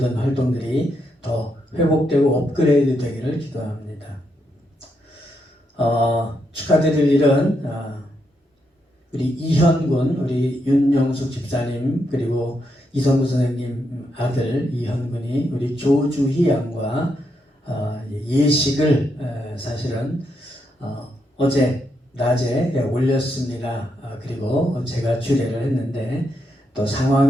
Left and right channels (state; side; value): normal; both; correlation 0.80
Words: 활동들이 더 회복되고 업그레이드 되기를 기도합니다. 축하드릴 일은 우리 이현군, 우리 윤영숙 집사님, 그리고 이성구 선생님 아들 이현군이 우리 조주희 양과 예식을 사실은 어제 낮에 올렸습니다. 그리고 제가 주례를 했는데 또